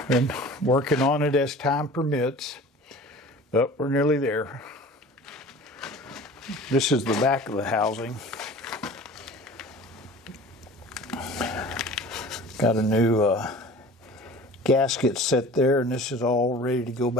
been working on it as time permits, but we're nearly there. This is the back of the housing. Got a new gasket set there, and this is all ready to go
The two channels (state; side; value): normal; both; correlation 0.42